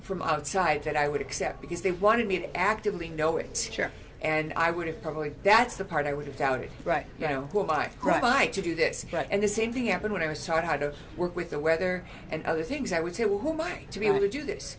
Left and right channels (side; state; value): both; identical; correlation 1.00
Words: from outside that I would accept, because they wanted me to actively know it. Sure. And I would have that's the part I would have doubted. Right. Who am I? Who am I to do this? Right. And the same thing happened when I was taught how to work with the weather and other things. I would say, well, who am I to be able to do this?